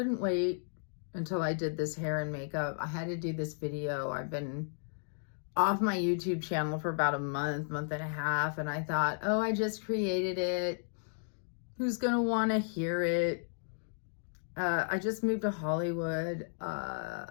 wait until I did this hair and makeup. I had to do this video. I've been off my YouTube channel for about a month and a half, and I thought, oh, I just created it. Who's going to want to hear it? I just moved to Hollywood,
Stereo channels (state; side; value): silent; right; digital silence